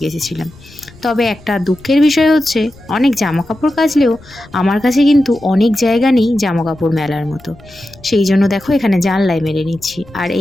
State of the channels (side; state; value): left; noise; rumble, 23 dB below the sound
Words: কেচেছিলাম, তবে একটা দুঃখের বিষয় হচ্ছে অনেক জামা কাপড় কাচলেও আমার কাছে কিন্তু অনেক জায়গা নেই জামা কাপড় মেলার মতো। সেই জন্য দেখো এখানে জানলায় মেলে নিচ্ছি। আর